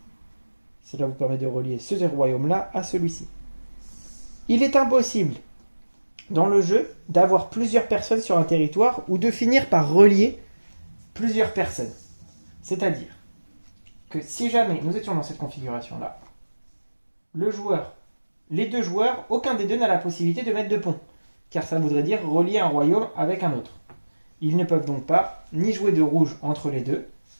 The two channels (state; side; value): inverted; both; correlation -1.00